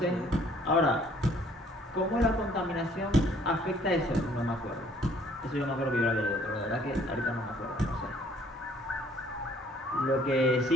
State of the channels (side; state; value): both; normal; correlation 0.60